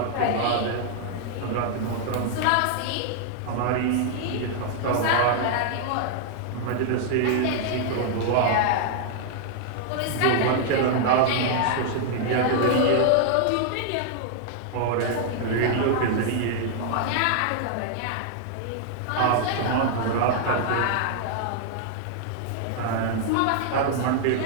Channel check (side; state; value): both; different; correlation -0.01